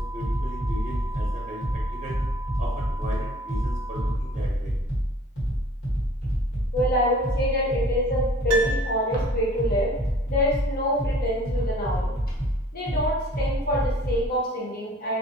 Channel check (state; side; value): normal; both; correlation 0.53